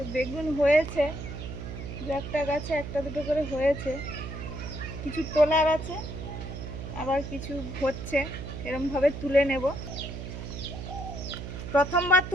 বেগুন হয়েছে, দু একটা গাছে একটা দুটো করে হয়েছে, কিছু তোলার আছে আবার কিছু হচ্ছে, এরমভাবে তুলে নেব। প্রথমবার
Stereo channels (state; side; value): noise; right; hum, 8 dB below the sound